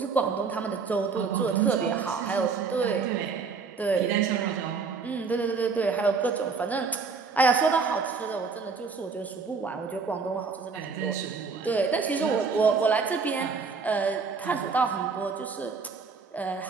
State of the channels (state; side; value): quieter; left; 5.0 dB